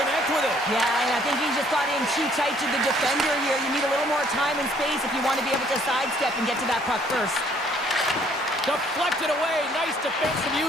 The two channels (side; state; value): both; normal; correlation 0.62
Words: with it. Yeah, and I think he just got in too tight to the defender here. You need a little more time and space if you want to be able to sidestep and get to that puck first. Deflected away. Nice defensive